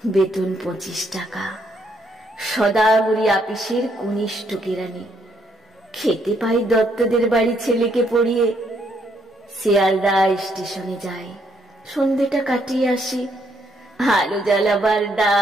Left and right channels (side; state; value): both; normal; correlation 0.72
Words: বেতন 25 টাকা, সদাগরি আপিসের কনিষ্ঠ কেরানি। খেতে পাই দত্তদের বাড়ি ছেলেকে পড়িয়ে। শিয়ালদা স্টেশনে যাই, সন্ধ্যেটা কাটিয়ে আসি। আলো জ্বালাবার